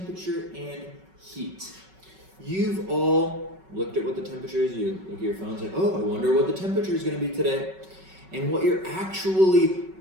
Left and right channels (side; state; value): left; late; 5.3 ms